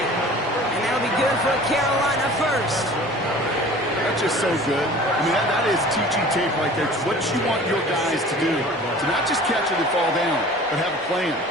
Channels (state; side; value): normal; both; correlation 0.44